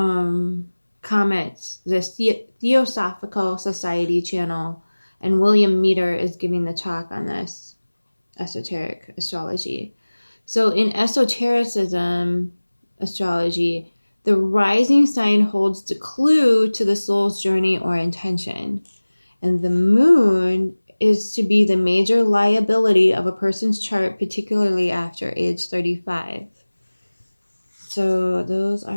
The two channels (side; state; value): both; inverted; correlation -1.00